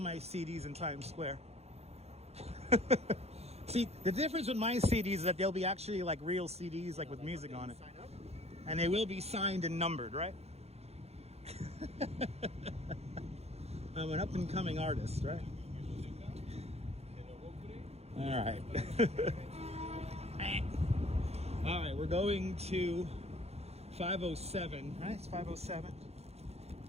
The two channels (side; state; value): left; late; 0.30 ms